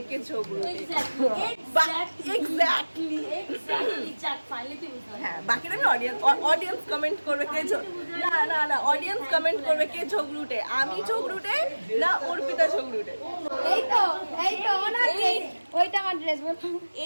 কে ঝগড়ুটে। এক্স্যাক্টলি। হ্যাঁ, বাকিটা আমি অডিয়েন্স কমেন্ট করবে কে না অডিয়েন্স কমেন্ট করবে কে ঝগড়ুটে, আমি ঝগড়ুটে না অর্পিতা ঝগড়ুটে। ওইটা আমার ড্রেস।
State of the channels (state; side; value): inverted; both; correlation -1.00